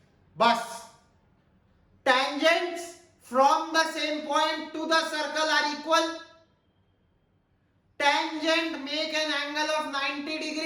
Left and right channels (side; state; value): both; identical; correlation 1.00